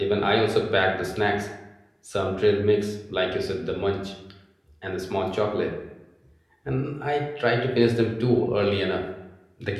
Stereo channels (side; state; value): both; identical; correlation 1.00